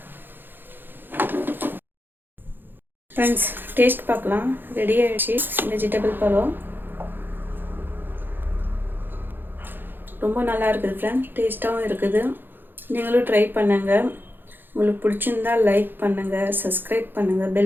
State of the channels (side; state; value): left; late; 0.096 ms